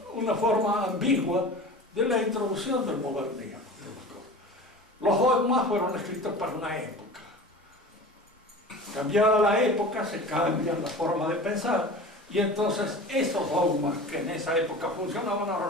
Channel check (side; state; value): both; normal; correlation 0.36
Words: una forma ambigua de la introducción del modernismo. Los dogmas fueron escritos para una época. Cambiada la época, se cambia la forma de pensar, y entonces esos dogmas que en esa época funcionaban, ahora